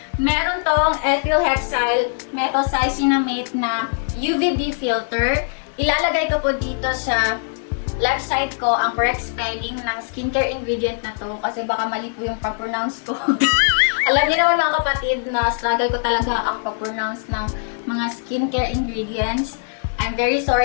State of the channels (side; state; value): right; silent; digital silence